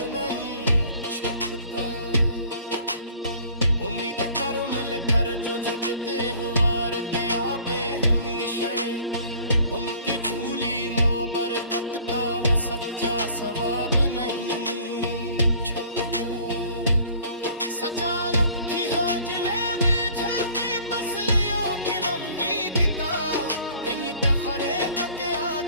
नहीं छुपता। उम्मीद कर मिल कर जो झुकते हुआर के आपे हमेशा, उनकी झूली मोबरकत का वो सच्चा सवाब नहीं छुपता। सच्चा रुखी हो जिले में छपे बसलियों की नमनीद का, इन तखरे के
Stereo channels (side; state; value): both; inverted; correlation -0.52